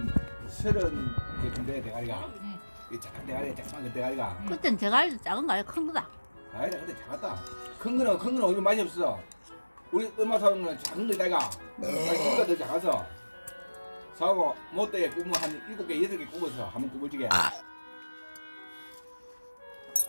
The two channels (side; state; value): both; inverted; correlation -1.00